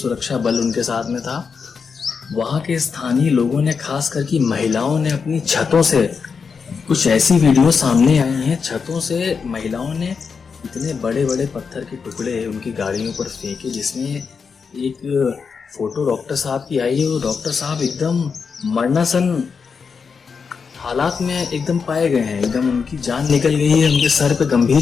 सुरक्षा बल उनके साथ में था। वहाँ के स्थानीय लोगों ने, खास करके महिलाओं ने, अपनी छतों से कुछ ऐसी वीडियो सामने आई हैं। छतों से महिलाओं ने इतने बड़े बड़े पत्थर के टुकड़े उनकी गाड़ियों पर फेंके, जिसमें एक फोटो डॉक्टर साहब की आई है। वो डॉक्टर साहब एकदम मरणासन हालात में एकदम पाए गए हैं, एकदम उनकी जान निकल गई है, उनके सर पे गंभीर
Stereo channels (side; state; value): right; quieter; 5.7 dB